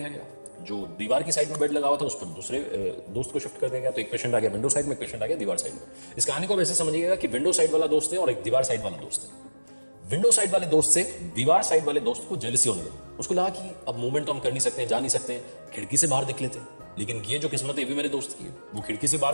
गया। जो दीवार की साइड में बेड लगा हुआ था, उस पर दूसरे दोस्त को शिफ्ट कर दिया गया। तो एक पेशेंट आ गया विंडो साइड में, एक पेशेंट आ गया दीवार साइड में। इस कहानी को वैसे समझिएगा कि विंडो साइड वाला दोस्त है और एक दीवार साइड वाला दोस्त है। विंडो साइड वाले दोस्त से दीवार साइड वाले दोस्त को जेलसी होने लगी। उसको लगा कि अब मूवमेंट तो हम कर नहीं सकते, जा नहीं सकते, खिड़की से बाहर देख लेते हैं। लेकिन ये जो किस्मत है ये भी मेरे दोस्त की है, वो खिड़की से बाहर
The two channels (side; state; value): both; inverted; correlation -1.00